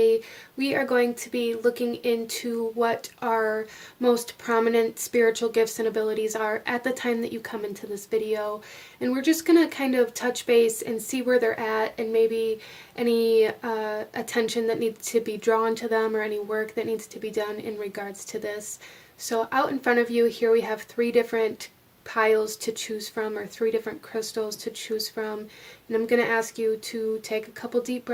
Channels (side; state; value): both; identical; correlation 1.00